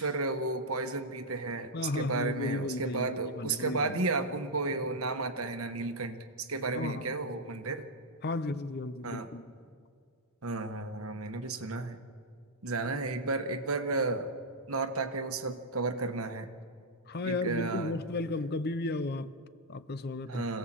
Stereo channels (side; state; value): both; normal; correlation -0.02